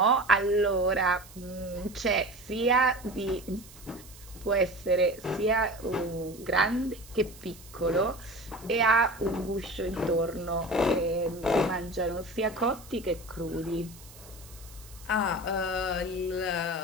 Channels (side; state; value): right; noise; hiss, 20 dB below the sound